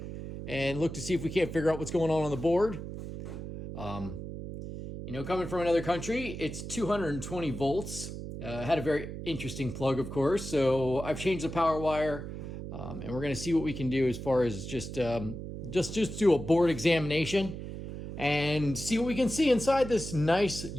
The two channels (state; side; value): noise; right; hum, 8 dB below the sound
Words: and look to see if we can't figure out what's going on the board. Coming from another country, it's 220 volts. Had a very interesting plug, of course. So I've changed the power wire, and we're going to see what we can do as far as just do a board examination and see what we can see inside this nice